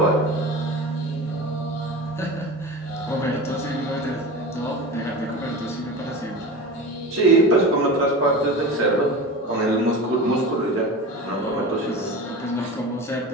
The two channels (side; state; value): both; normal; correlation 0.31